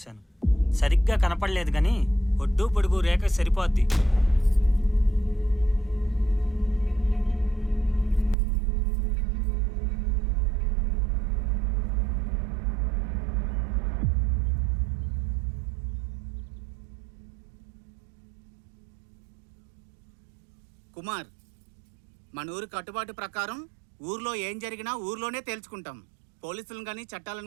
సరిగ్గా కనపడలేదు కానీ ఒడ్డు పొడుగు రేఖ సరిపోద్ది. కుమార్, మన ఊరి కట్టుబాటు ప్రకారం ఊర్లో ఏం జరిగినా ఊర్లోనే తేల్చుకుంటాం. పోలీసులను కానీ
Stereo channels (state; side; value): drops out; left; at 8.3 s